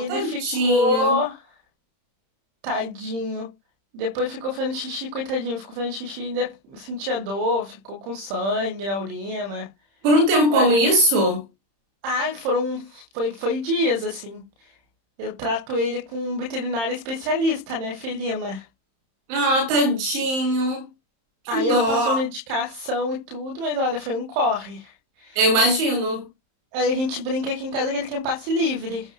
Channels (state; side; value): late; left; 31 ms